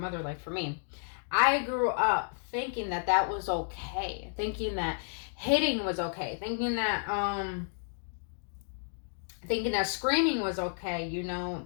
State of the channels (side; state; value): right; silent; digital silence